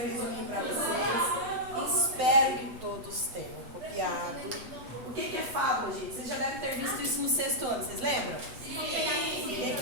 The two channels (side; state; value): left; late; 8.0 ms